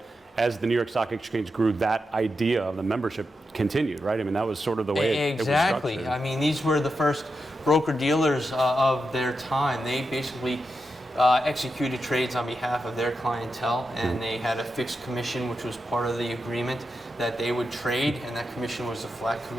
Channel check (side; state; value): both; normal; correlation 0.88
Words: as the New York Stock Exchange grew, that idea of the membership continued, right? I mean, that was sort of the way it was structured. I mean, these were the first broker-dealers of their time. They basically executed trades on behalf of their clientele, and they had a fixed commission, which was part of the agreement that they would trade, and that commission was a flat